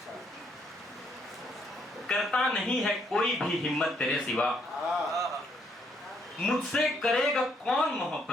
करता नहीं है कोई भी हिम्मत तेरे सिवा, मुझसे करेगा कौन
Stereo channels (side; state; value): both; normal; correlation 0.71